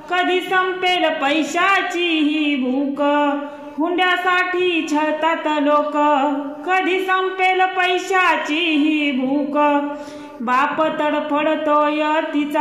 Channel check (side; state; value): both; identical; correlation 1.00